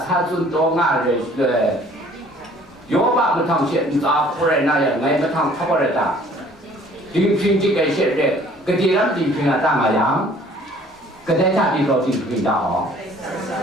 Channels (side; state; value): both; normal; correlation 0.55